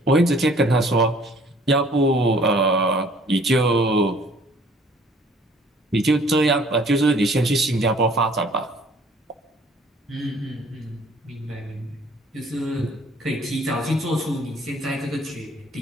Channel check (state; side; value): normal; both; correlation 0.56